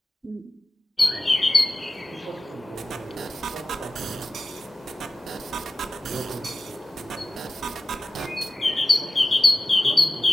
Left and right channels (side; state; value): both; normal; correlation 0.95